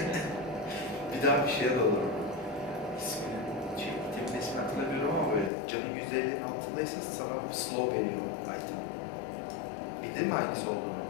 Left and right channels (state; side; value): drops out; right; at 5.5 s